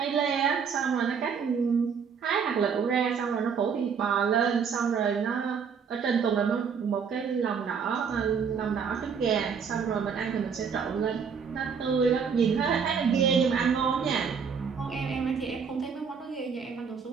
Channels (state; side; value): quieter; left; 6.4 dB